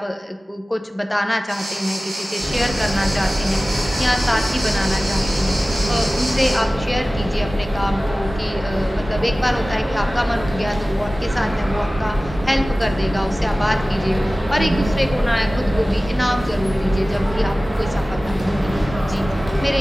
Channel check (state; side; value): normal; both; correlation 0.97